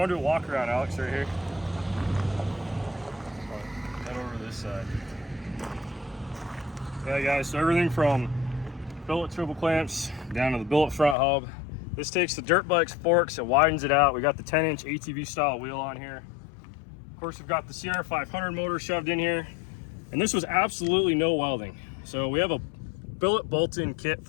to do a walk around, Alex, right here? Head over to this side. Yeah guys, so everything from billet triple clamps down to the billet front hub. This takes the dirt bike's forks and widens it out. We got the 10-inch ATV style wheel on here. Of course, we've got the CR500 motor shoved in here, and this was absolutely no welding. So we have a billet bolt-in kit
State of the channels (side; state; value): right; drops out; at 11.2 s